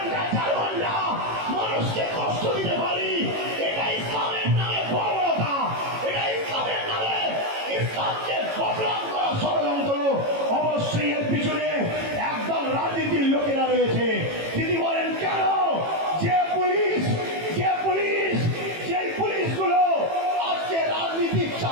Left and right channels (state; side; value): late; left; 18 ms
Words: 4 ঘন্টা মানুষকে কষ্ট দিতে পারি। এটা ইসলামের নামে বর্বরতা, এটা ইসলামের নামে ইসলামকে বদনাম করা ষড়যন্ত্র। অবশ্যই এর পিছনে একদল রাজনীতির লোকেরা রয়েছে। তিনি বলেন কেন? যে পুলিশগুলো আজকে রাজনীতির